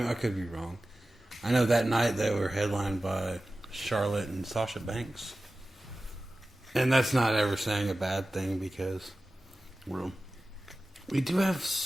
could be wrong. I know that night they were headlined by Charlotte and Sasha Banks. And that's not ever saying a bad thing because we do have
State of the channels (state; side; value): normal; both; correlation 0.95